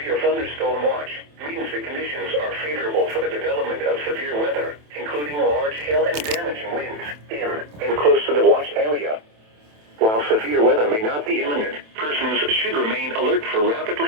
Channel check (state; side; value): late; left; 27 ms